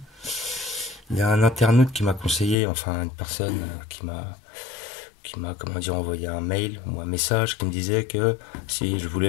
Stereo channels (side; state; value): right; drops out; at 2.6 s